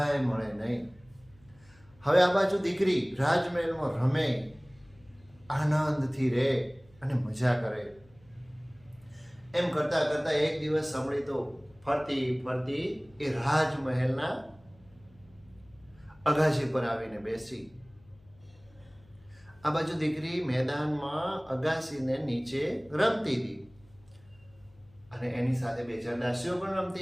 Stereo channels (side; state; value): left; noise; hum, 28 dB below the sound